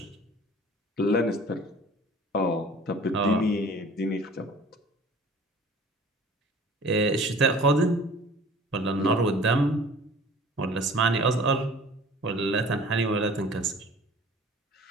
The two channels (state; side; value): normal; both; correlation 0.47